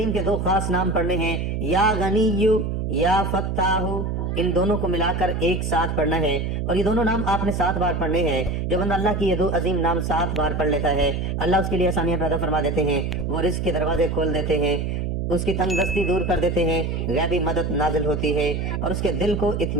کے 2 خاص نام پڑھنے ہیں، یا غنی یا فتاح، ان دونوں کو ملا کر ایک ساتھ پڑھنا ہے، اور یہ دونوں نام آپ نے 7 بار پڑھنے ہیں۔ جو بندہ اللہ کی یہ 2 عظیم نام 7 بار پڑھ لیتا ہے، اللہ اس کے لیے آسانیاں پیدا فرما دیتے ہیں، وہ رزق کے دروازے کھول دیتے ہیں، اس کی تنگ دستی دور کر دیتے ہیں، غیبی مدد نازل ہوتی ہے اور اس کے دل کو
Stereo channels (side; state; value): right; noise; hum, 1 dB below the sound